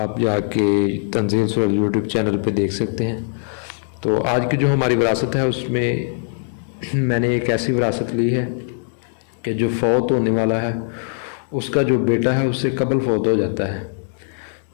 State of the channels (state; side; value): silent; right; 64 dB below the other